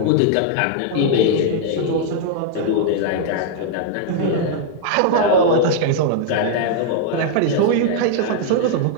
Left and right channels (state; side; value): different; both; correlation -0.01